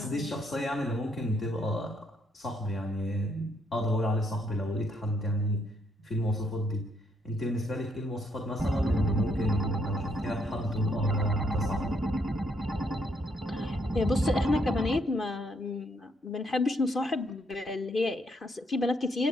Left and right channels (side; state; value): both; normal; correlation 0.73